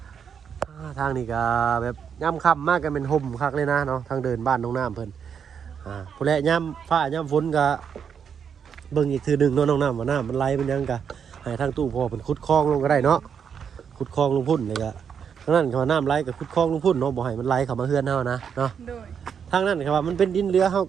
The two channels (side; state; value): left; quieter; 7.3 dB